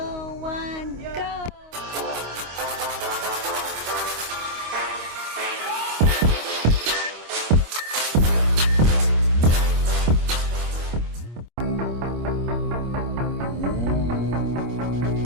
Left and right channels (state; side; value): late; left; 25 ms